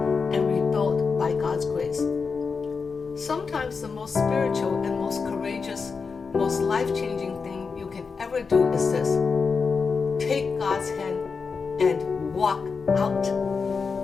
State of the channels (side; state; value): right; quieter; 5.1 dB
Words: and rebuilt by God's grace. Sometimes the most spiritual and most courageous, most life-changing thing you can ever do is this: take God's hand and walk out.